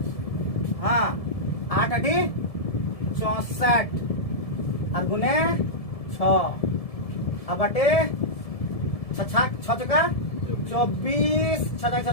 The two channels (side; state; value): right; late; 1.7 ms